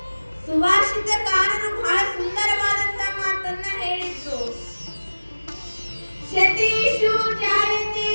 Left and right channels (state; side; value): inverted; both; correlation -1.00